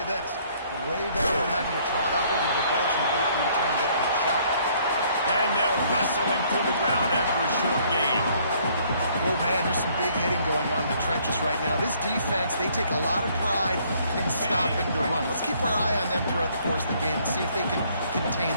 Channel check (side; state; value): both; inverted; correlation -0.63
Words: this. Way better than having to trot up over the bench and wait for your turn to get your shot. And they'll wrestle him to the ground after a short gain. Oh, man, there's some big hitting going on in the trenches right now. This defense, they take a lot of pride in stopping the run. Let's keep our eye on them throughout the course of the game and see if they can contain